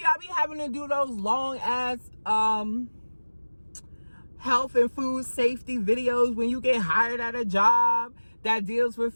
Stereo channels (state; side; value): inverted; both; correlation -1.00